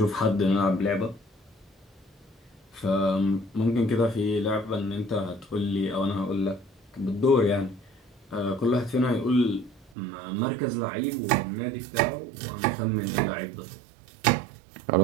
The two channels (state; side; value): drops out; left; at 10.0 s